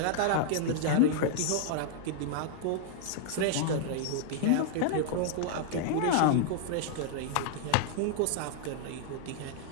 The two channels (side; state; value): both; different; correlation -0.01